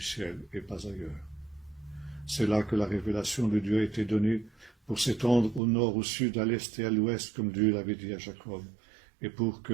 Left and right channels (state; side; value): drops out; left; at 5.6 s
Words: et pas ailleurs. C'est là que la révélation de Dieu a été donnée pour s'étendre au nord, au sud, à l'est et à l'ouest, comme Dieu l'avait dit à Jacob, et pour